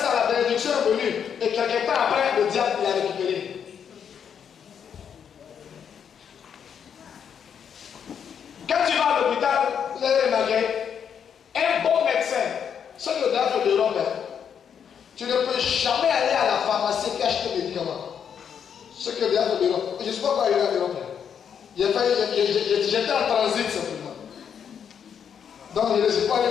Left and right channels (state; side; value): quieter; right; 7.8 dB